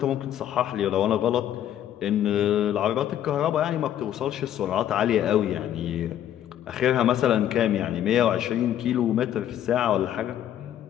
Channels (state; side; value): quieter; right; 11.1 dB